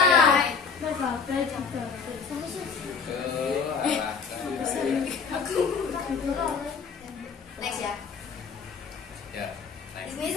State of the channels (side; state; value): right; quieter; 5.5 dB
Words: Next ya. Ya, Di sini